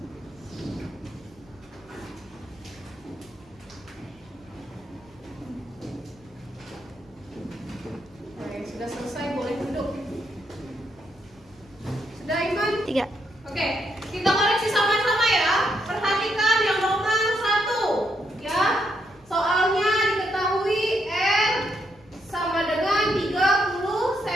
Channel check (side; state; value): left; noise; rumble, 29 dB below the sound